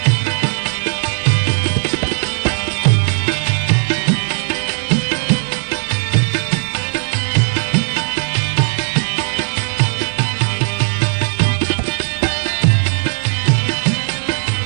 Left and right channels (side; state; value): left; silent; digital silence